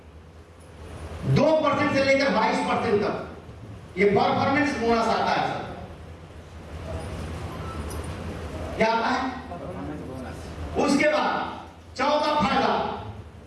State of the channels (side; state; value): both; identical; correlation 1.00